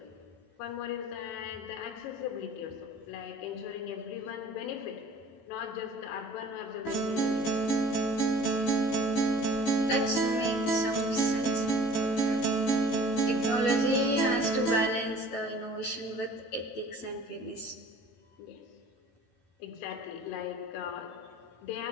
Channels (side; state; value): right; late; 18 ms